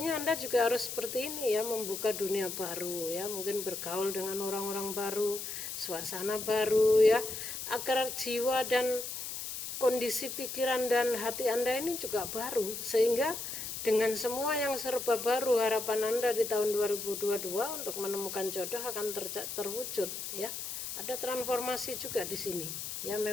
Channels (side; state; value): left; noise; hiss, 6 dB below the sound